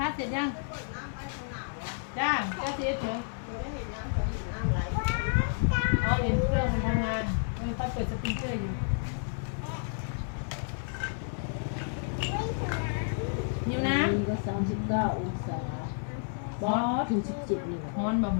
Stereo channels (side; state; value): right; silent; digital silence